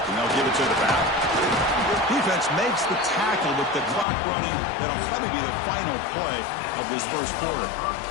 And they'll give it to the back. Defense makes the tackle with the clock running. That'll probably be the final play of this first quarter.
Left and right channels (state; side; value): drops out; right; at 4.0 s